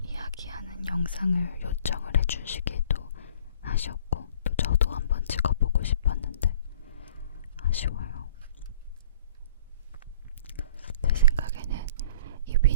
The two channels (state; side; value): inverted; both; correlation -0.49